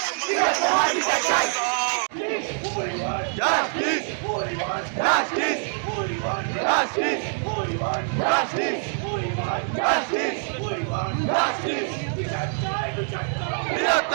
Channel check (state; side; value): silent; left; 59 dB below the other